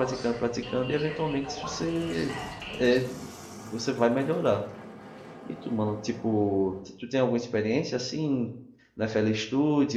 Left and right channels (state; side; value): identical; both; correlation 1.00